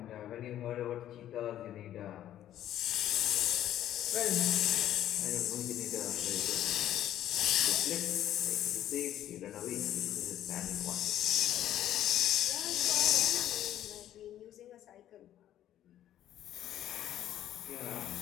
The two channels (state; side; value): quieter; right; 12.0 dB